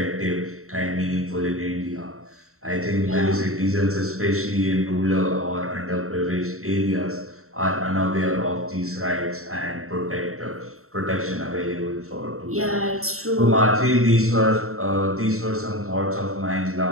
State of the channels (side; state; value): left; late; 0.63 ms